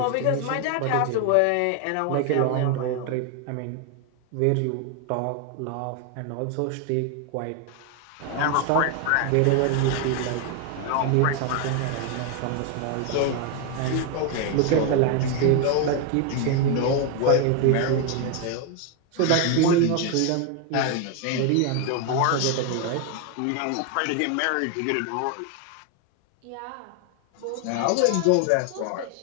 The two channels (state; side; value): different; both; correlation 0.01